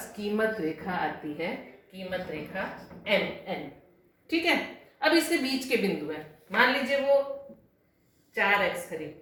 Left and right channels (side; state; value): both; identical; correlation 1.00